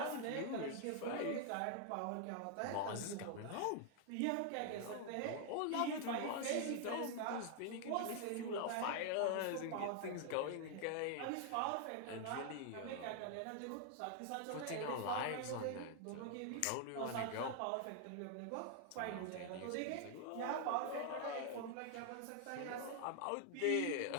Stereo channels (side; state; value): both; different; correlation 0.00